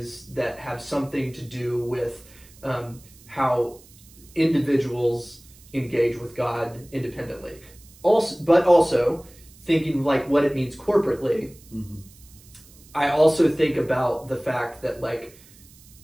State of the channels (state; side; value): noise; right; hiss, 24 dB below the sound